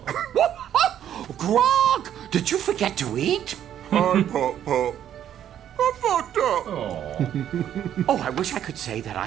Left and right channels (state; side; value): quieter; left; 10.4 dB